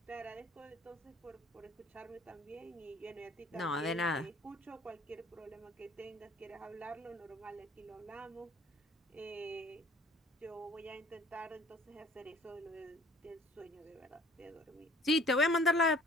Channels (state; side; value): normal; both; correlation 0.54